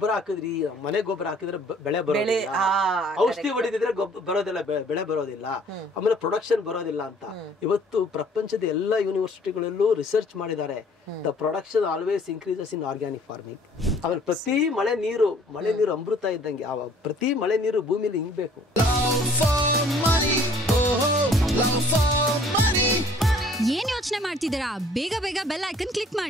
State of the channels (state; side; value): normal; both; correlation 0.56